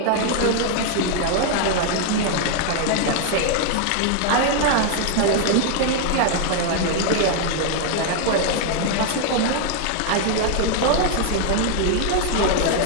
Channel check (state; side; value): different; both; correlation 0.00